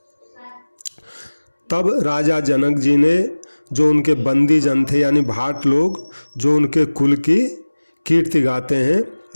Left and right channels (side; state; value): both; inverted; correlation -1.00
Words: तब राजा जनक जी ने जो उनके बंदी जन थे यानी भाट लोग, जो उनके कुल की कीर्ति